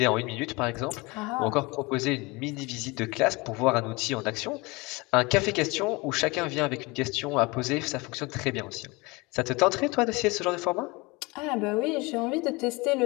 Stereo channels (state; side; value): quieter; right; 25.1 dB